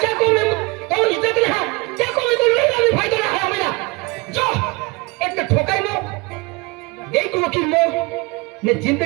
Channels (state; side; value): quieter; left; 25.9 dB